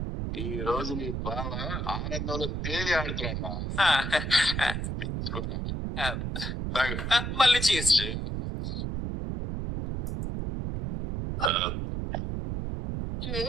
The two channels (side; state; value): right; noise; rumble, 3 dB below the sound